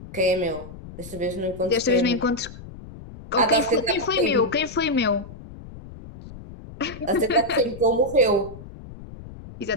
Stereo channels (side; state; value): left; noise; rumble, 15 dB below the sound